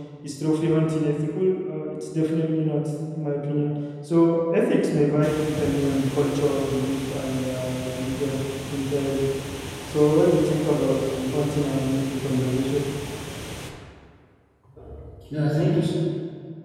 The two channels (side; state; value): both; identical; correlation 1.00